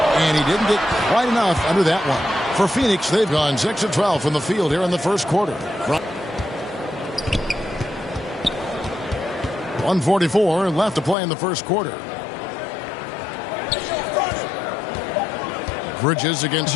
and he didn't get quite enough under that one. For Phoenix, they've gone 6 of 12 from the field here in the first quarter. 1:44 left to play in the first quarter. Bridges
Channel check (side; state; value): right; drops out; at 11.2 s